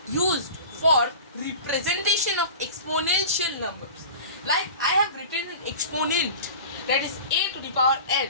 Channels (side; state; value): both; inverted; correlation -0.37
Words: used for representation of exponential numbers. Like I have written an exponent, that is a to the power n.